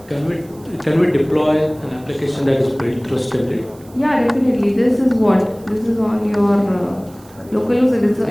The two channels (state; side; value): noise; right; hiss, 27 dB below the sound